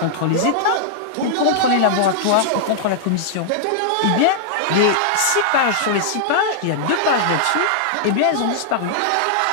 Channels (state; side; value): different; both; correlation -0.02